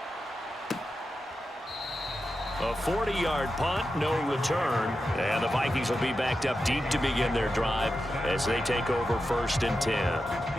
A 40-yard punt, no return. And the Vikings will be backed up deep to begin their drive as they take over 1st and 10.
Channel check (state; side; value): normal; both; correlation 0.90